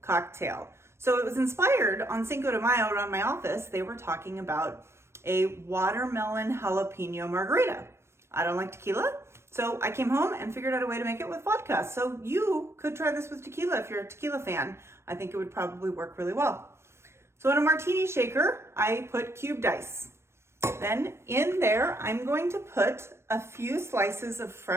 So it was inspired on Cinco de Mayo around my office. They were talking about a watermelon jalapeno margarita. I don't like tequila, so I came home and figured out a way to make it with vodka. So you could try this with tequila if you're a tequila fan. I think it would probably work really well. So in a martini shaker, I put cubed ice. Then in there, I'm going to put a few slices of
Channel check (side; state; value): left; late; 0.13 ms